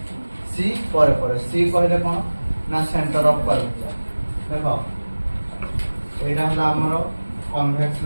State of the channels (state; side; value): inverted; both; correlation -1.00